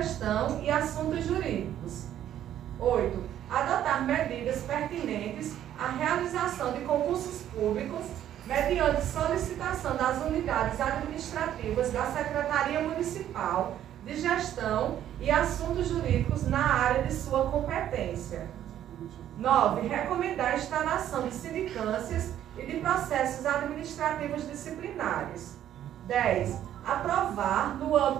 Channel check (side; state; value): left; quieter; 11.2 dB